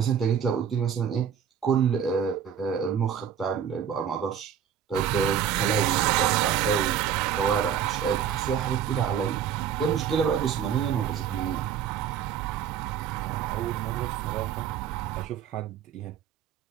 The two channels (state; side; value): quieter; left; 8.4 dB